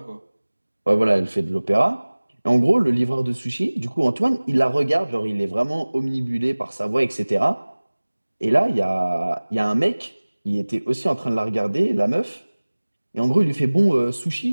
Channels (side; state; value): both; inverted; correlation -1.00